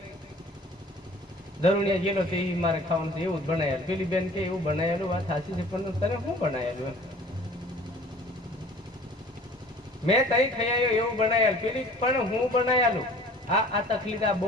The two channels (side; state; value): both; normal; correlation 0.48